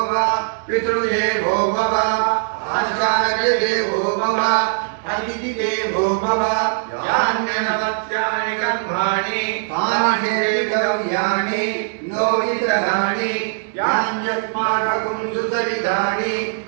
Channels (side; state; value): left; silent; digital silence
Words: पितृदेवो भव आचार्यदेवो भव अतिथिदेवो भव यान्यनमत्यानि कर्माणि तानि हेतव्यानि नो इतराणि यान्यस्माकं सुचरितानि